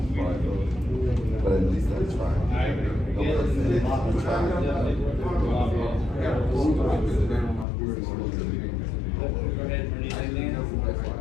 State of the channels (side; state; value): right; drops out; at 7.7 s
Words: But at least that's fine.